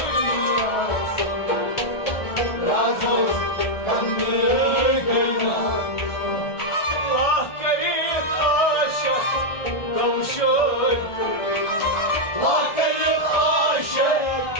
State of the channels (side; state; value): right; late; 1.4 ms